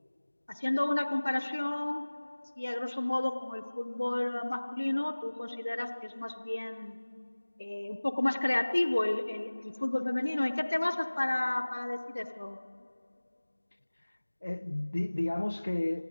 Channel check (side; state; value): both; inverted; correlation -1.00